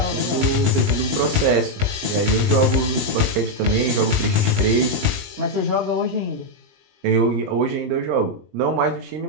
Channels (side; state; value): left; late; 20 ms